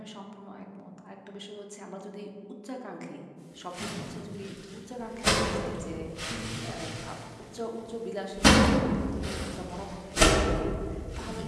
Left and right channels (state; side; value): identical; both; correlation 1.00